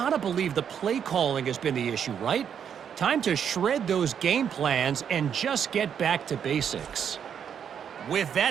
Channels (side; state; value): left; quieter; 8.1 dB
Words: believe the play calling has been the issue, right? Time to shred those game plans and just get back to basics. With